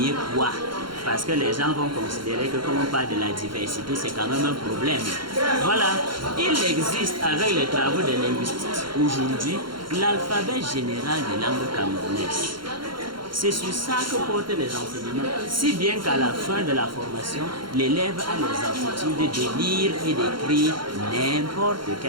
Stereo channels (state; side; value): late; left; 0.73 ms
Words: quoi? Parce que les gens vont considérer que comme on parle de la diversité, c'est quand même un problème. Voilà, il existe avec les travaux des linguistes aujourd'hui l'alphabet général des langues camerounaises. C'est sur ça que portent les enseignements, si bien qu'à la fin de la formation, l'élève a les aptitudes de lire et d'écrire n'importe